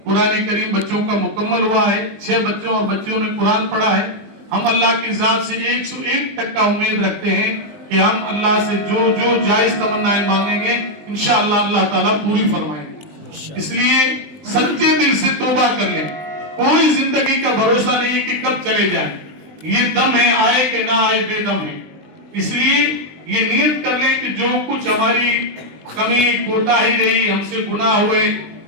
قرآن کریم بچوں کا مکمل ہوا ہے, 6 بچوں اور بچیوں نے قرآن پڑھا ہے. ہم اللہ کی ذات سے 101% امید رکھتے ہیں کہ ہم اللہ سے جو جو جائز تمنائیں مانگیں گے انشاءاللہ اللہ تعالیٰ پوری فرمائیں گے. اس لیے سچے دل سے توبہ کر لیں. کوئی زندگی کا بھروسہ نہیں ہے کہ کب چلے جائیں, یہ دم ہے, آئے کہ نہ آئے بے دم ہے. اس لیے یہ نیت کر لیں کہ جو کچھ ہماری کمی کوتاہی رہی, ہم سے گناہ ہوئے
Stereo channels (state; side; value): late; left; 20 ms